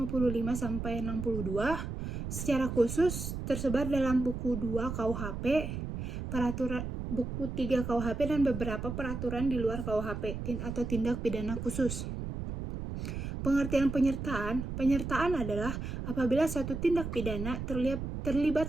sampai 62. Secara khusus tersebar dalam buku 2 KUHP, peraturan buku 3 KUHP, dan beberapa peraturan di luar KUHP atau tindak pidana khusus. Pengertian penyertaan adalah apabila suatu tindak pidana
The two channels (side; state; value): right; noise; rumble, 5 dB below the sound